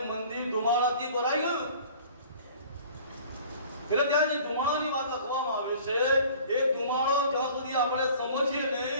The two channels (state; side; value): inverted; both; correlation -0.48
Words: મંદિર ધુમાડાથી ભરાઈ ગયું. એટલે ત્યાં જે ધુમાડાની વાત લખવામાં આવે છે એ ધુમાડો જ્યાં સુધી આપણે સમજીએ